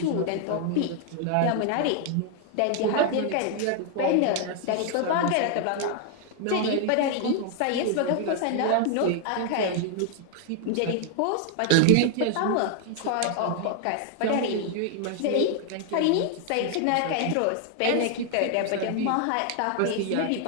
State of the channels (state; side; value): different; both; correlation 0.00